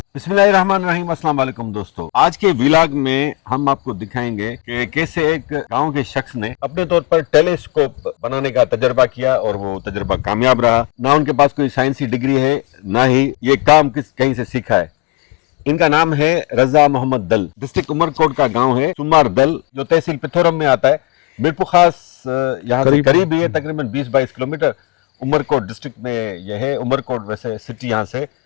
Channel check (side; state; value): right; quieter; 25.0 dB